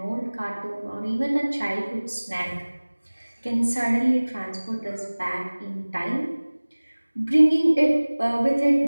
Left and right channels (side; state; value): both; inverted; correlation -1.00